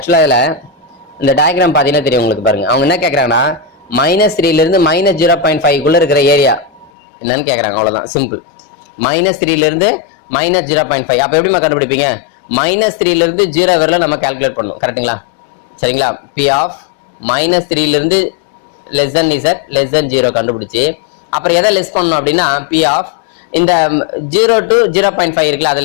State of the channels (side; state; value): right; drops out; at 6.9 s